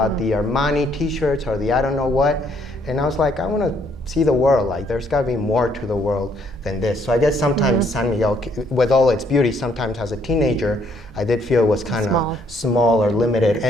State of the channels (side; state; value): both; normal; correlation 0.67